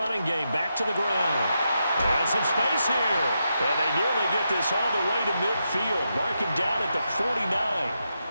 game. Back to the ground. And some space here. And they nearly get this all the way to midfield. Mark him down at the 49.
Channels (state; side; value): inverted; both; correlation -0.85